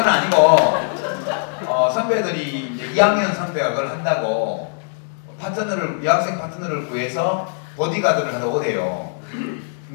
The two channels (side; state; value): right; silent; 64 dB below the other